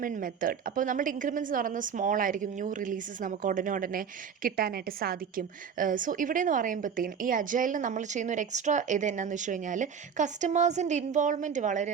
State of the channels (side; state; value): left; quieter; 7.0 dB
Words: method. അപ്പോൾ നമ്മുടെ ഇൻക്രിമെൻറ്റ്സ് എന്ന് പറയുന്നത് സ്മോൾ ആയിരിക്കും. ന്യൂ റിലീസസ് നമുക്ക് ഉടനെ കിട്ടാനായിട്ട് സാധിക്കും. സോ ഇവിടെ എന്ന് പറയുമ്പോഴത്തേനും ഈ അജൈലിൽ നമ്മൾ ചെയ്യുന്ന ഒരു എക്സ്ട്രാ ഇത് എന്നാന്ന് വെച്ച് കഴിഞ്ഞാൽ കസ്റ്റമേഴ്സിൻ്റെ ഇൻവോൾവ്മെൻറ്റ്